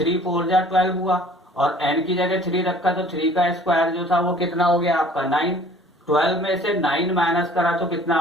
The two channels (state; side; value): normal; both; correlation 0.52